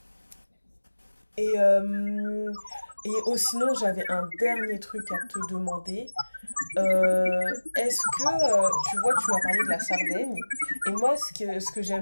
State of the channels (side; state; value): both; inverted; correlation -1.00